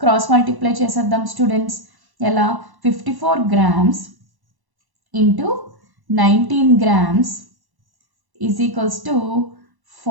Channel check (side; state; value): left; late; 1.1 ms